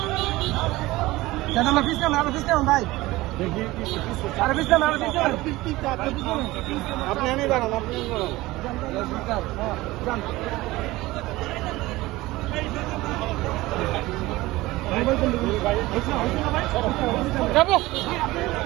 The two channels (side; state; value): left; quieter; 19.1 dB